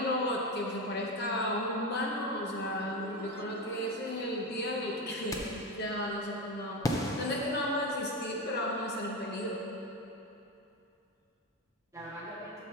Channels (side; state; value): both; normal; correlation 0.18